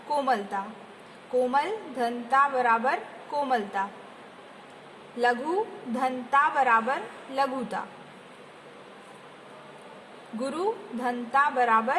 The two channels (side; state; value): both; identical; correlation 1.00